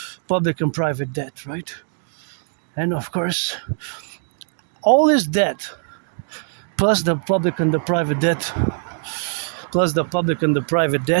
Public and private debt, right? And of course, all this debt, plus the public and the private debt,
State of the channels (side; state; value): left; silent; digital silence